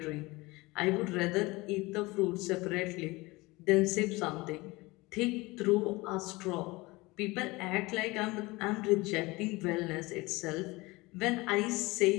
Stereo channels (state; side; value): quieter; right; 22.4 dB